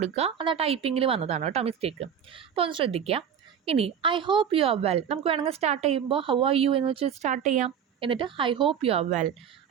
അത് ആ ടൈപ്പിങ്ങിൽ വന്നതാണ് കേട്ടോ മിസ്റ്റേക്ക്. അപ്പോൾ ഒന്ന് ശ്രദ്ധിക്കുക. ഇനി I hope you are well. നമുക്ക് വേണമെങ്കിൽ സ്റ്റാർട്ട് ചെയ്യുമ്പോൾ ഹൗ ആർ യു എന്ന് വെച്ച് സ്റ്റാർട്ട് ചെയ്യാം. എന്നിട്ട് I hope you are well.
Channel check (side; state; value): left; quieter; 8.2 dB